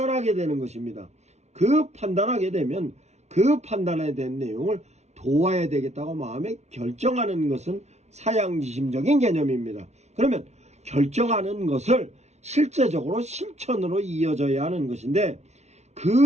되는 것입니다. 그 판단하게 되면 그 판단에 대한 내용을 도와야 되겠다고 마음에 결정하는 것은 사양지심적인 개념입니다. 그러면 결정하는 것을 실제적으로 실천으로 이어져야 하는 것인데,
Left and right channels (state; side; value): late; left; 0.32 ms